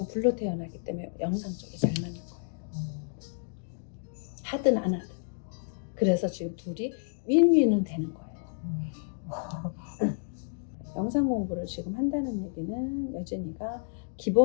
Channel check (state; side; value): silent; right; digital silence